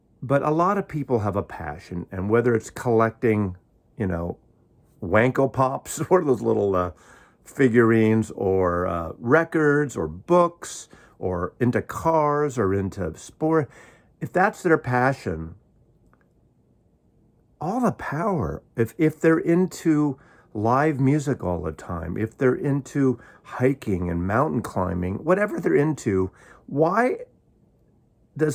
but a lot of people have a passion. And whether it's collecting, Wanko Pops, what are those little figurines, or records, or books, or into cars, or into sport, if that's their passion, all the power. If they're into live music all the time, if they're into hiking and mountain climbing, whatever they're into, why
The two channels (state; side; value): identical; both; correlation 1.00